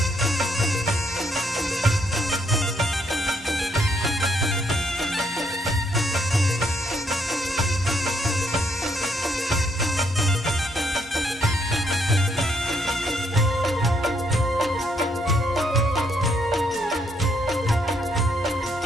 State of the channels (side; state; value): both; normal; correlation 0.72